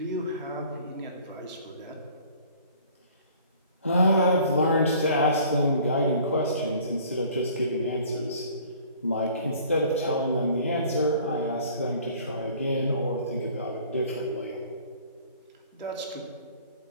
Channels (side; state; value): both; inverted; correlation -0.51